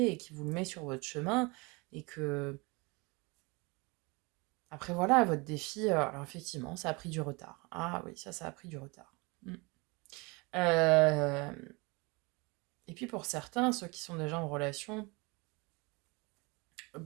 et qui vous le met sur votre chemin et que... Après, voilà, votre défi, alors effectivement, ça a pris du retard. Ah oui, ça a pris du retard. Mm. Euh, Et puis pour certains, ceux qui sont déjà en relation,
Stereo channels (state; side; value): quieter; left; 27.3 dB